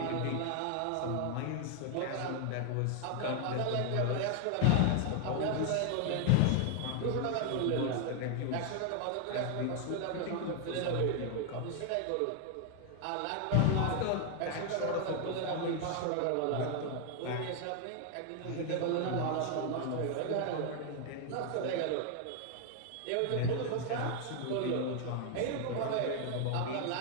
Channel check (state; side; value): different; both; correlation 0.00